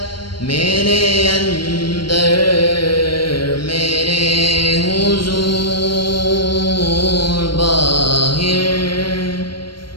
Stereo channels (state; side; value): late; right; 0.72 ms